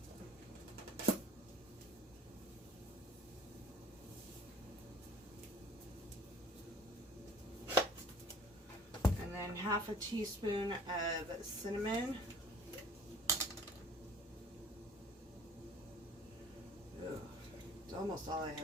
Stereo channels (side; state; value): both; normal; correlation 0.50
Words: And then 1/2 teaspoon of cinnamon. Ugh, it's almost all I